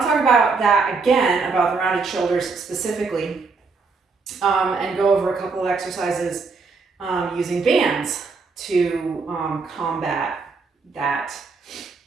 to talk about that again, about the rounded shoulders specifically, and go over a couple of exercises using bands to combat that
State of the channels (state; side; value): quieter; left; 4.5 dB